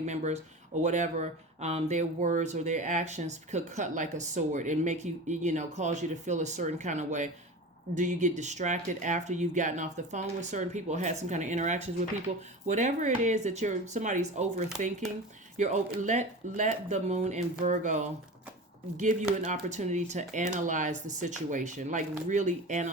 or whatever. Their words or their actions could cut like a sword and make you, cause you to feel a certain kind of way. Do you get distracted after you've gotten off the phone with certain people or had some kind of interactions with people? Whatever it is that somebody's overthinking, let the moon in Virgo give you an opportunity to analyze the situation, like really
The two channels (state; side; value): normal; both; correlation 0.31